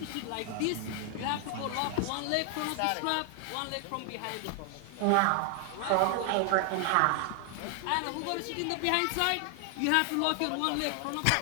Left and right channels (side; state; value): both; different; correlation 0.00